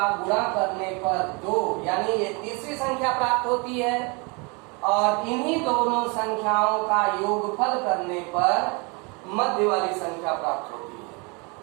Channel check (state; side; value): quieter; left; 30.5 dB